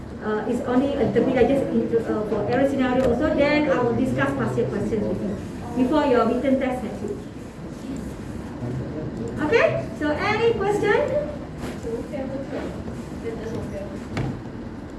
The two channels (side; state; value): both; identical; correlation 1.00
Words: It's only a little bit I just for error scenario also. Then I will discuss past year questions with you before your written test next week. Okay? So any question?